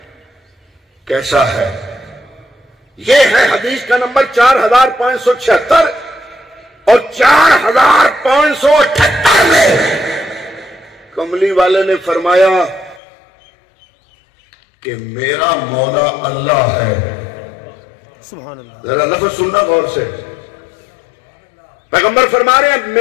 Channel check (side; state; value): right; drops out; at 13.0 s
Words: کیسا ہے، یہ ہے حدیث کا نمبر 4,576، اور 4,578 میں کملی والے نے فرمایا کہ میرا مولا اللہ ہے۔ سبحان اللہ۔ ذرا لفظ سننا غور سے، پیغمبر فرما رہے ہیں